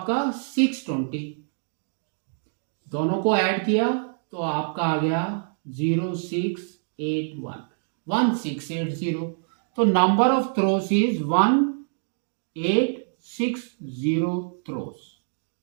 620, दोनों को ऐड किया तो आपका आ गया 0681, 1680, तो number of throws is 1860 throws.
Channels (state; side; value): silent; left; digital silence